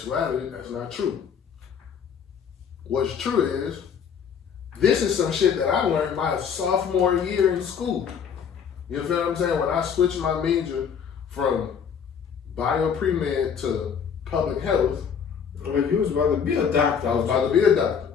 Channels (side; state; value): right; quieter; 7.1 dB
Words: that's not true. What's true is, this is some shit that I learned my sophomore year in school. You feel what I'm saying? When I switched my major from bio pre-med to public health. Well, you was about to be a doctor. I was about to be a doctor.